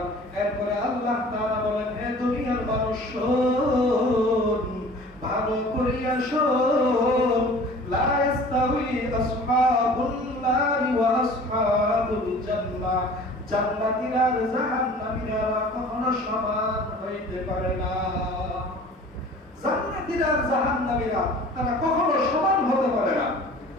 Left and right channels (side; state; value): both; normal; correlation 0.45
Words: এরপরে আল্লাহ তাআলা বলেন, হে দুনিয়ার মানুষ শোন, ভালো করিয়া শোন, লা ইস্তাউই আসহাবুন নারি ওয়া আসহাবুল জান্নাহ। জান্নাতীরা আর জাহান্নামীরা কখনো সমান হইতে পারে না। জান্নাতীরা আর জাহান্নামীরা তারা কখনো সমান হতে পারে না।